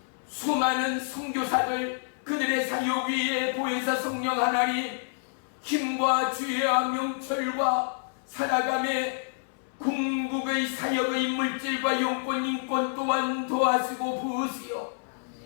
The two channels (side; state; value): right; silent; 59 dB below the other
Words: 수많은 선교사들, 그들의 사역 위에 보혜사 성령 하나님 힘과 지혜와 명철과 살아감의 궁극의 사역의 물질과 영권 인권 또한 도와주고 부으시오.